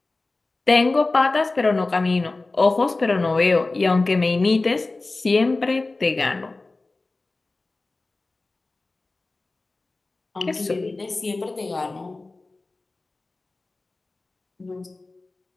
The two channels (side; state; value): right; quieter; 3.3 dB